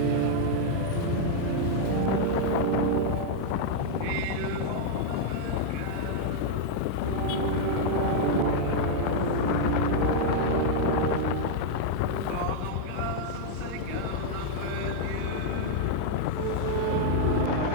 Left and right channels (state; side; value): different; both; correlation -0.01